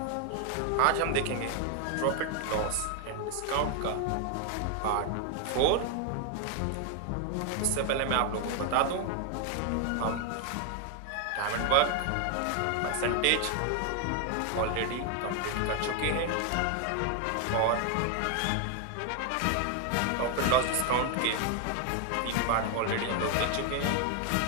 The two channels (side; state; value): both; different; correlation 0.01